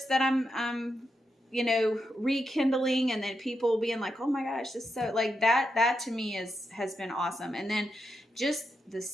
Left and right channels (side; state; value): both; normal; correlation 0.85